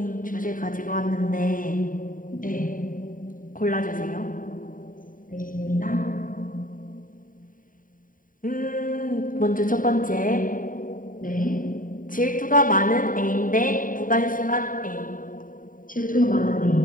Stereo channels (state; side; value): late; right; 0.39 ms